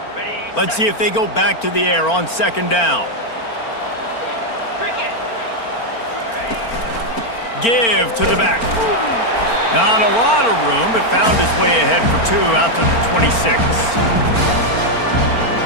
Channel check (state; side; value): late; right; 4.4 ms